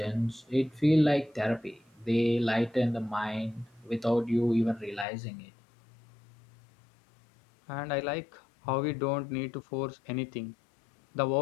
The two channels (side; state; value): right; drops out; at 5.1 s